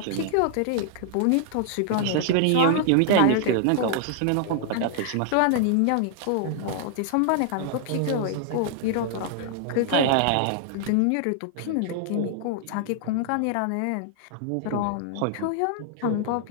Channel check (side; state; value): both; different; correlation 0.00